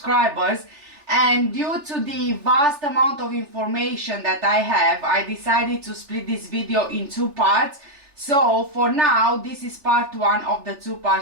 and due to the vast amount of information that I have, I decided to split this video in two parts. So for now, this is part one of the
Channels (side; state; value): left; late; 3.4 ms